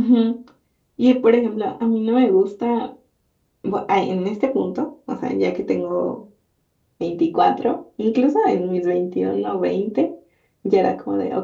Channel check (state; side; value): identical; both; correlation 1.00